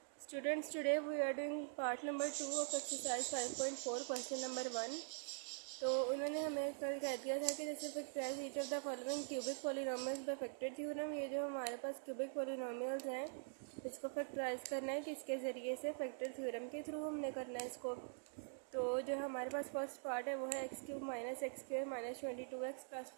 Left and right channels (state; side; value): silent; left; digital silence